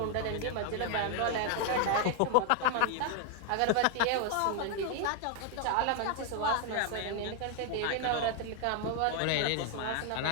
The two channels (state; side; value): different; both; correlation 0.00